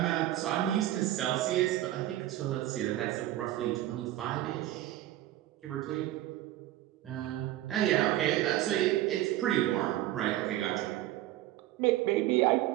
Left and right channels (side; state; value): left; quieter; 14.4 dB